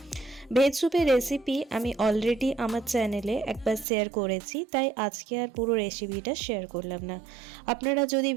ভেজ স্যুপের রেসিপি আমি অলরেডি আমার চ্যানেলে একবার শেয়ার করেছি, তাই আজকে আর পুরো রেসিপিটা শেয়ার করলাম না। আপনারা যদি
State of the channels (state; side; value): drops out; left; at 3.9 s